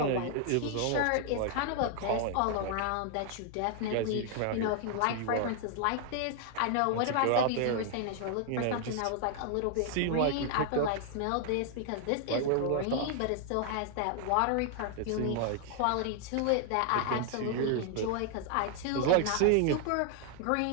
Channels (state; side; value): different; both; correlation 0.00